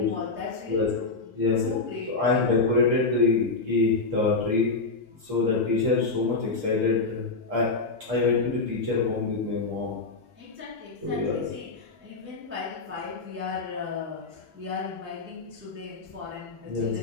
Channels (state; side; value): quieter; right; 3.9 dB